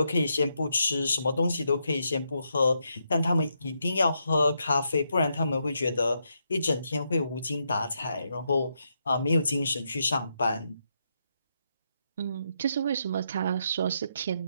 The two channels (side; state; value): both; inverted; correlation -0.80